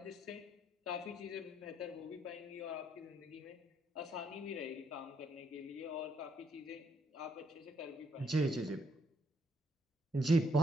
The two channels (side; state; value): both; normal; correlation 0.71